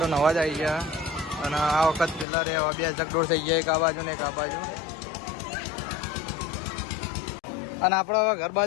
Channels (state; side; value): drops out; right; at 2.2 s